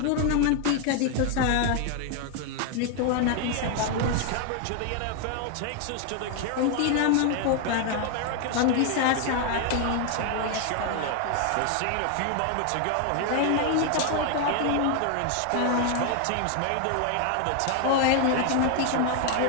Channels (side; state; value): both; different; correlation 0.00